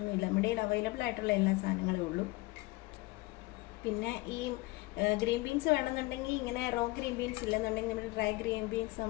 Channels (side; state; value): right; quieter; 21.9 dB